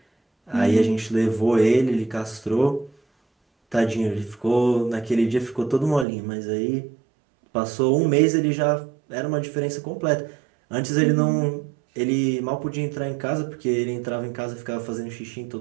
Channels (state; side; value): drops out; left; at 6.1 s